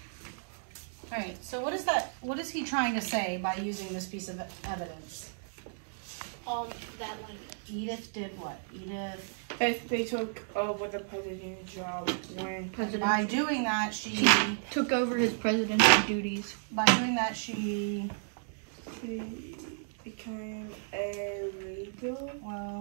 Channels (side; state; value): left; silent; digital silence